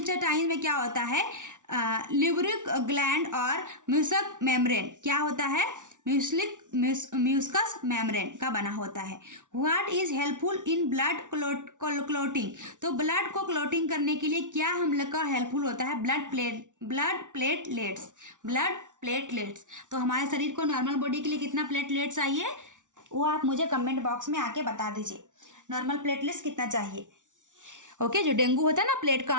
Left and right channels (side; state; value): left; late; 0.87 ms